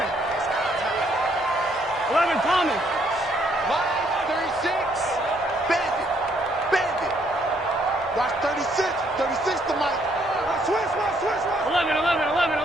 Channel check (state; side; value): normal; both; correlation 0.69